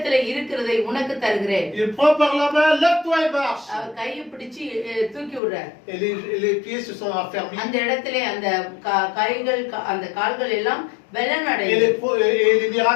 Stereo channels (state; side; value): drops out; right; at 5.4 s